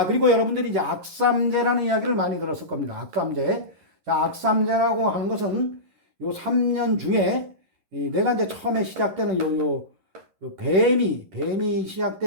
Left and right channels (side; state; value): left; late; 10 ms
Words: 그리고 여러분들이 이제 악삼재라는 이야기를 많이 들었을 겁니다. 악삼재. 자, 악삼재라고 하는 것은 요 3년 중에 내가 이제 처음에 시작되는 요 뱀이